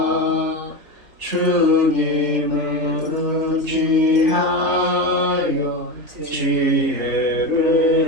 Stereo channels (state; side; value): late; left; 3.4 ms